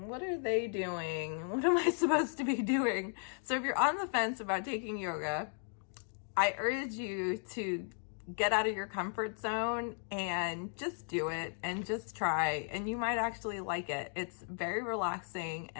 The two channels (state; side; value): silent; right; 54 dB below the other